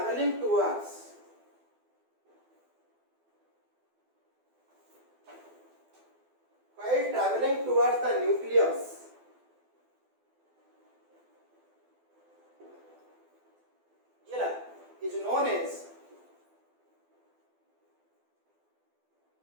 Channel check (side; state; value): left; late; 12 ms